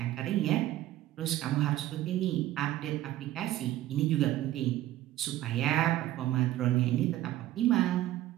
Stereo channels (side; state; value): left; quieter; 14.4 dB